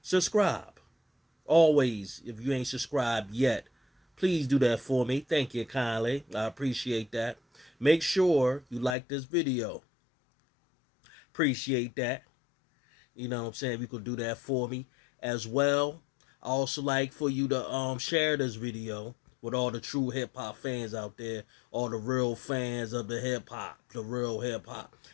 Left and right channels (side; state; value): right; drops out; at 9.0 s